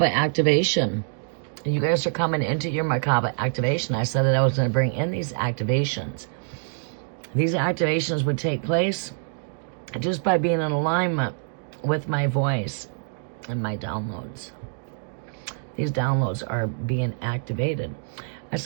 activation, you guys are coming into your Merkaba activation. I said that I was going to bring in these activations. These activations would take place just by being in alignment with my voice and my downloads. These downloads are being activated. I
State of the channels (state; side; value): silent; left; digital silence